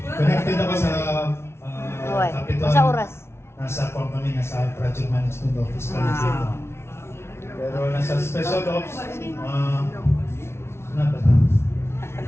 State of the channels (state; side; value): late; right; 0.12 ms